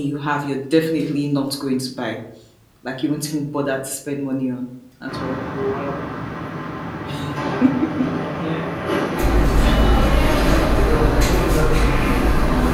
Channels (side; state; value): both; identical; correlation 1.00